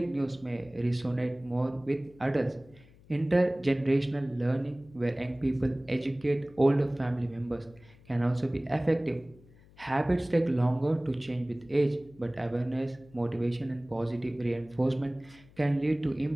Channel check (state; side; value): noise; left; hum, 25 dB below the sound